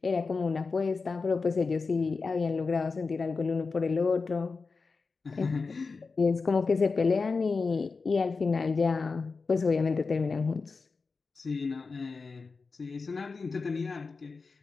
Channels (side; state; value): right; quieter; 4.4 dB